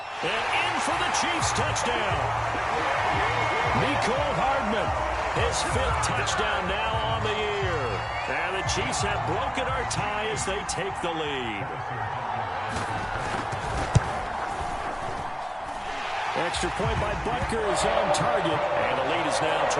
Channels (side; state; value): both; identical; correlation 1.00